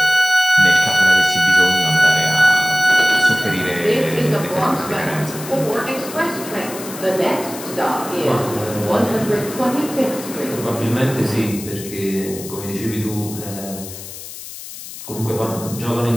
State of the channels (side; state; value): left; noise; hiss, 12 dB below the sound